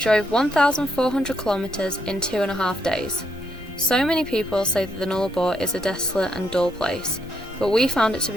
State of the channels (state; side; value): normal; both; correlation 0.77